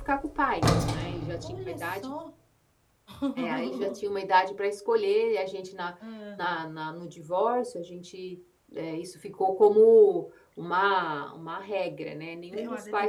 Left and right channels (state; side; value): identical; both; correlation 1.00